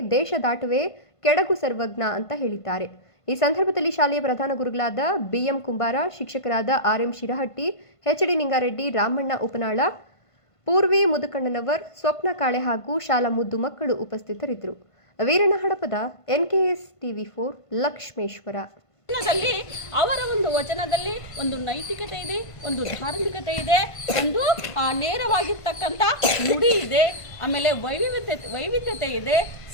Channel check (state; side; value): late; right; 1.5 ms